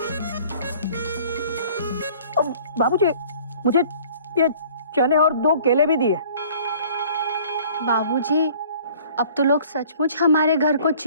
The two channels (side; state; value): both; inverted; correlation -0.52